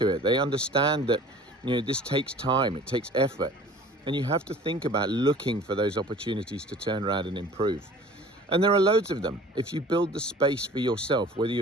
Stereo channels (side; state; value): both; normal; correlation 0.46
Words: it. They understand that this takes time, it takes effort, and you have to think about looking for those opportunities to turn around and improve. And there are loads of them. If you build the space for yourself, whether